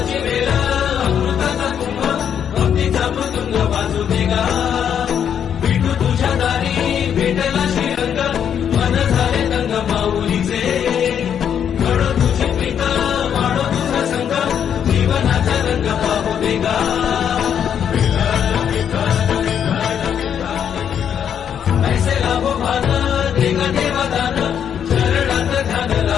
वेळ अमृताचा कुंभ भक्तीचा मृदुंग वाजू देगा विठू तुझ्या दारी भेटला श्रीरंग मन झाले दंग माऊलीचे घडो तुझी प्रीत वाढो तुझा संग जीवनाचा रंग पाहू देगा ऐसे लाभो भान देगा देवादान चरणात ध्यान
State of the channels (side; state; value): right; quieter; 8.6 dB